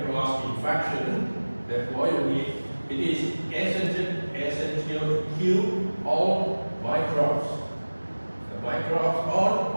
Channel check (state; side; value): inverted; both; correlation -1.00